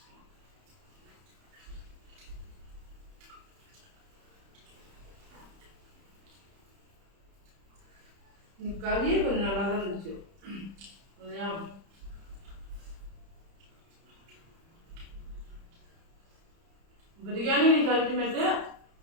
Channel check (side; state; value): left; late; 30 ms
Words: கறியே கொஞ்சம் நல்லா தான் இருந்துச்சு இல்லையா? பிரியாணி நீ அல்டிமேட்டு.